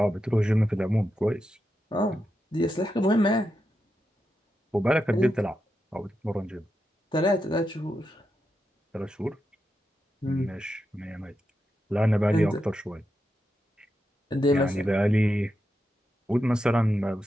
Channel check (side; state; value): both; normal; correlation 0.87